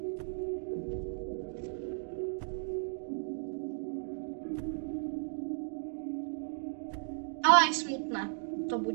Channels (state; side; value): silent; left; digital silence